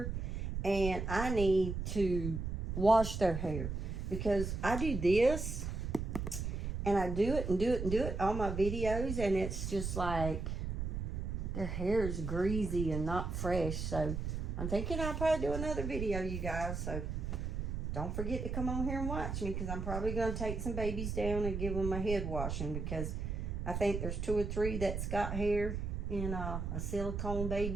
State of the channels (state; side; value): noise; right; rumble, 3 dB below the sound